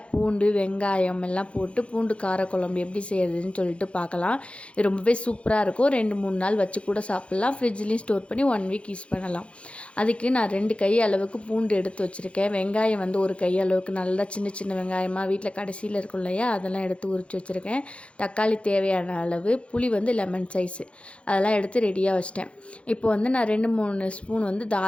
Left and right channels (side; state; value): right; late; 0.060 ms